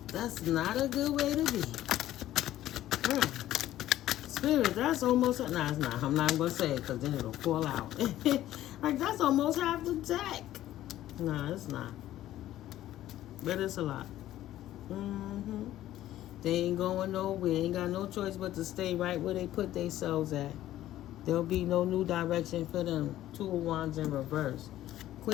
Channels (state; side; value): quieter; right; 13.6 dB